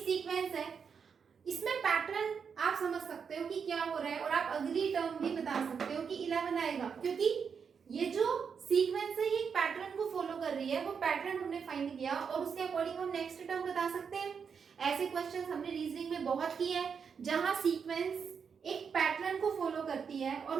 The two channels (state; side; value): quieter; left; 6.4 dB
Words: है। इसमें पैटर्न आप समझ सकते हो कि क्या हो रहा है, और आप अगली टर्म भी बता सकते हो कि 11 आएगा, क्योंकि ये जो सीक्वेंस है ये एक पैटर्न को फॉलो कर रही है। वो पैटर्न हमने फाइंड किया और उसके अकॉर्डिंग हम नेक्स्ट टर्म बता सकते हैं। ऐसे क्वेश्चन हमने रीजनिंग में बहुत किए हैं, जहां सीक्वेंस एक पैटर्न को फॉलो करती है